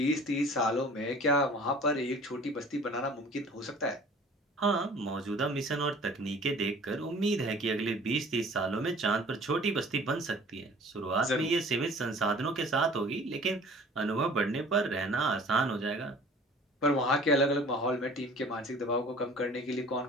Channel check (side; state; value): both; normal; correlation 0.47